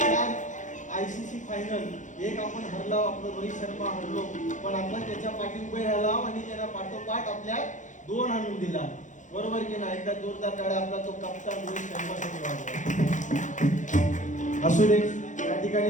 ICC फायनल, एक आपण हरलो, आपलं रोहित शर्मा हरलो, पण आपण त्याच्या पाठी उभे राहिलो आणि त्याला पाठोपाठ आपल्या 2 आणून दिला. बरोबर की नाही? एकदा जोरदार टाळ्या आपला तो कप्तान रोहित शर्मासाठी वाजवा. असू दे. या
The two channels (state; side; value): late; right; 0.36 ms